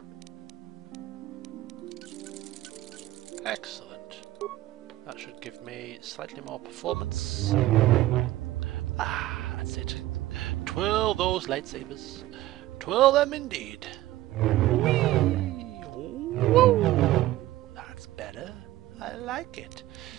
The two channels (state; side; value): quieter; left; 15.9 dB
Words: Excellent. That should give me slightly more performance. Ah, that's it. Twirl those lightsabers. Twirl them indeed. Whee! Woo! That's better. I like it.